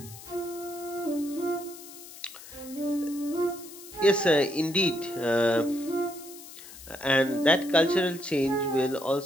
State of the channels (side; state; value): left; noise; hiss, 16 dB below the sound